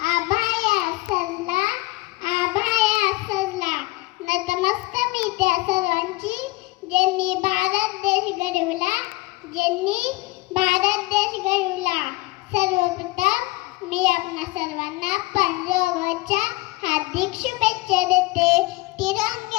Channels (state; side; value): quieter; right; 21.9 dB